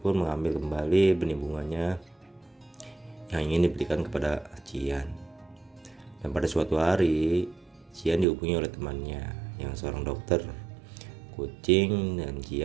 pun mengambil kembali benih bunganya yang ingin diberikan kepada Cian. Dan pada suatu hari, Cian dihubungi oleh temannya yang seorang dokter kucing dan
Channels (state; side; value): drops out; left; at 8.2 s